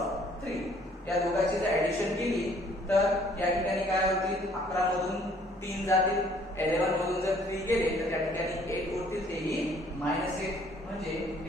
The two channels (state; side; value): normal; both; correlation 0.60